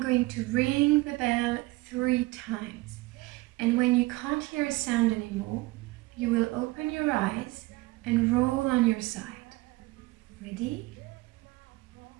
going to ring the bell 3 times. And when you can't hear a sound anymore, you will open your eyes and roll on your side. Ready?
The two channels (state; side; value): quieter; left; 21.3 dB